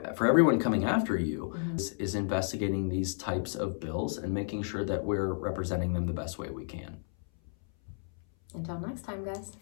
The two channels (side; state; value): right; silent; 57 dB below the other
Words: everyone coming after you is investigating these types of bills and making sure that we're representing them the best way we can. Until next time, guys.